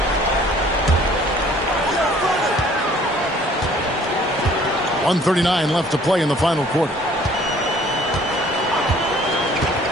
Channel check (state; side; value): normal; both; correlation 0.55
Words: .139 left to play in the final quarter.